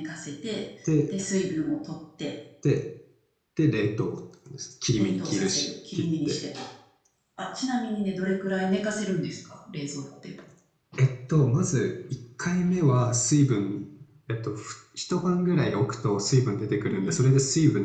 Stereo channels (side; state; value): both; identical; correlation 1.00